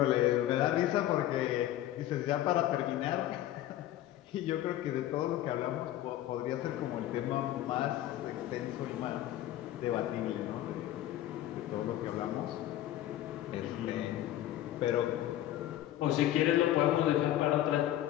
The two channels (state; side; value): quieter; right; 13.3 dB